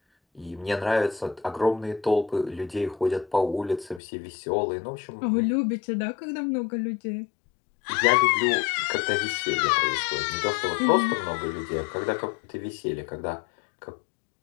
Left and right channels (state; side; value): drops out; right; at 4.0 s